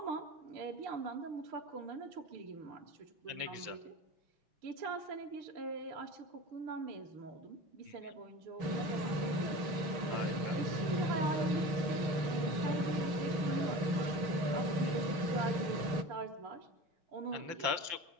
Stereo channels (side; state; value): left; late; 6.3 ms